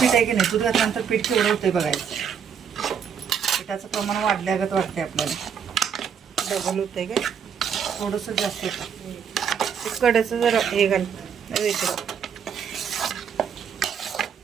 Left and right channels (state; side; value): quieter; left; 7.4 dB